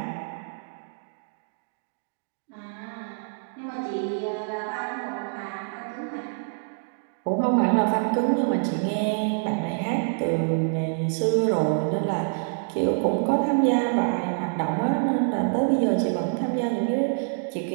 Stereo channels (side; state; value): left; silent; digital silence